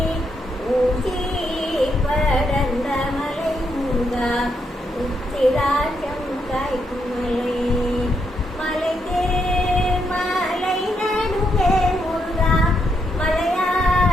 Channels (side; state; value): both; normal; correlation 0.79